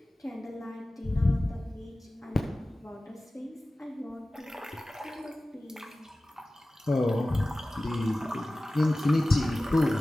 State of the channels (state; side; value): normal; both; correlation 0.97